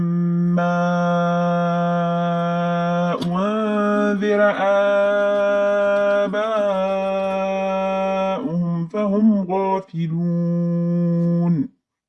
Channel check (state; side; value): identical; both; correlation 1.00